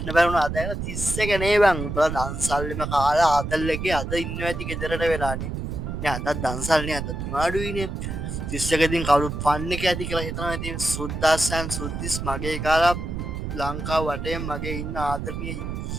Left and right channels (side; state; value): right; noise; rumble, 5 dB below the sound